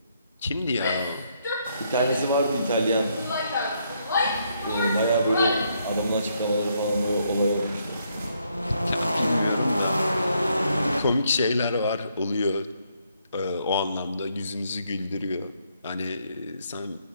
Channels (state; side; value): inverted; both; correlation -0.74